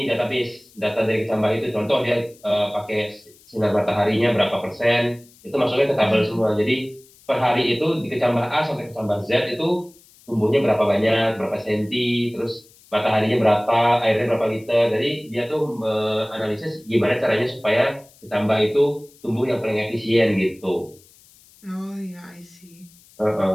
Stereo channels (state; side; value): noise; left; hiss, 27 dB below the sound